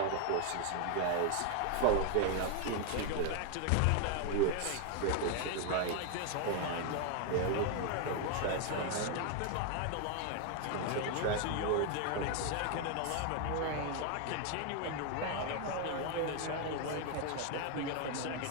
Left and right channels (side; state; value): both; different; correlation 0.01